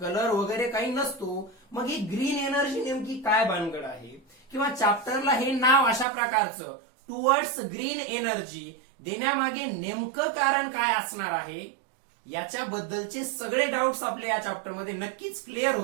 वगैरे काही नसतो. मग ही ग्रीन एनर्जी नेमकी काय भानगड आहे, किंवा चॅप्टरला हे नाव अशा प्रकारचं टुवर्ड्स ग्रीन एनर्जी देण्यामागे नेमकं कारण काय असणार आहे, याच्याबद्दलचे सगळे डाऊट्स आपल्या या चॅप्टरमध्ये नक्कीच क्लिअर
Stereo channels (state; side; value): drops out; left; at 6.1 s